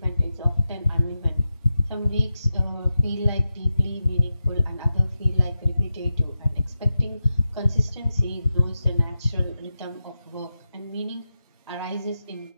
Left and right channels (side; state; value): both; inverted; correlation -0.91